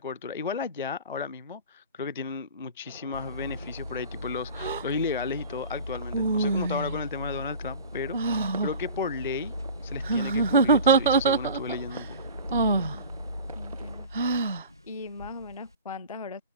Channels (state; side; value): inverted; both; correlation -0.39